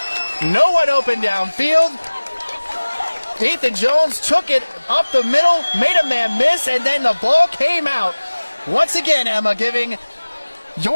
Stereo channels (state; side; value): inverted; both; correlation -1.00